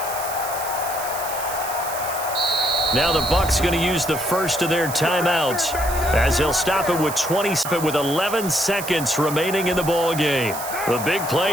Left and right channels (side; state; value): right; noise; hiss, 9 dB below the sound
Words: Now the Bucs going to use the first of their timeouts as they'll stop it with 11 seconds remaining in the ball game. The big